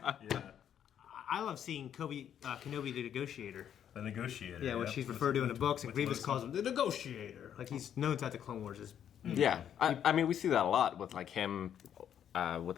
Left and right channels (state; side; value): quieter; right; 9.4 dB